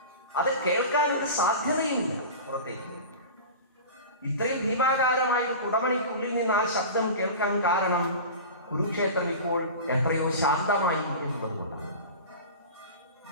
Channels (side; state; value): both; inverted; correlation -0.32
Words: അത് കേൾക്കാൻ ഒരു സാധ്യതയുമില്ല പുറത്തേക്ക്. ഇത്രയും ഭീമാകാരമായ ഒരു കുടമണിക്കുള്ളിൽ നിന്ന് ആ ശബ്ദം കേൾക്കാൻ കാരണം കുരുക്ഷേത്രം ഇപ്പോൾ എത്രയോ ശാന്തമായി എന്നുള്ളത് കൊണ്ടാണ്.